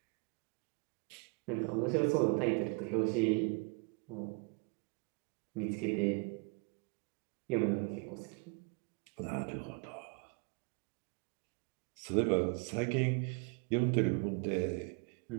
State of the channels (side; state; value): left; quieter; 32.9 dB